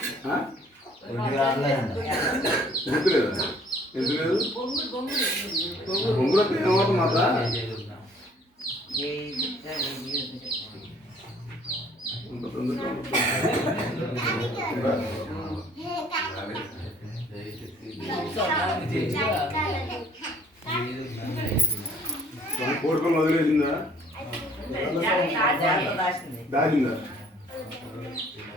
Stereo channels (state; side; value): normal; both; correlation 0.58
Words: గుర్తులేదా ఎందుకు లేదు బొంగులకు ఏమవుతుంది మాట కోరుకొని వదిలేసిందా దాచిందా